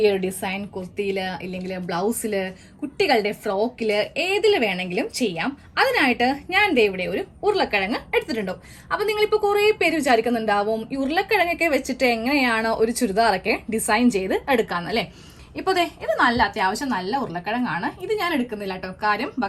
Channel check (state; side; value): identical; both; correlation 1.00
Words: ഒരു ഡിസൈൻ കുർത്തിയിൽ ഇല്ലെങ്കിൽ ബ്ലൗസിൽ കുട്ടികളുടെ ഫ്രോക്കിൽ ഏതിൽ വേണമെങ്കിലും ചെയ്യാം. അതിനായിട്ട് ഞാൻ ദേ ഇവിടെ ഒരു ഉരുളക്കിഴങ്ങ് എടുത്തിട്ടുണ്ടോ. അപ്പോൾ നിങ്ങളിപ്പോൾ കുറേ പേര് വിചാരിക്കുന്നുണ്ടാവും ഈ ഉരുളക്കിഴങ്ങൊക്കെ വെച്ചിട്ട് എങ്ങനെയാണ് ഒരു ചുരിദാറൊക്കെ ഡിസൈൻ ചെയ്ത് എടുക്കാമെന്നല്ലേ. ഇപ്പോൾ ദേ ഇത് നല്ല അത്യാവശ്യം നല്ല ഉരുളക്കിഴങ്ങാണ്. ഇത് ഞാൻ എടുക്കുന്നില്ല കേട്ടോ. കാര്യം